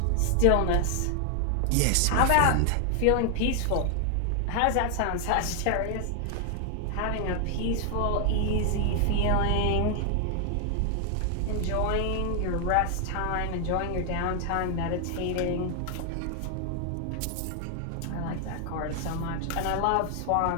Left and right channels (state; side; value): different; both; correlation 0.00